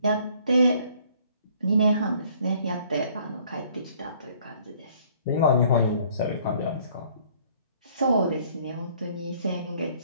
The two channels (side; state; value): both; inverted; correlation -0.60